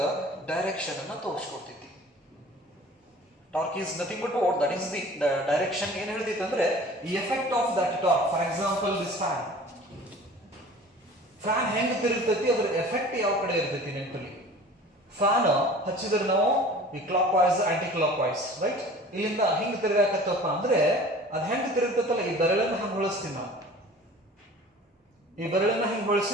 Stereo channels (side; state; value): both; normal; correlation 0.44